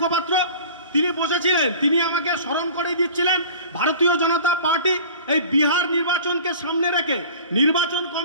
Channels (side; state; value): both; inverted; correlation -0.43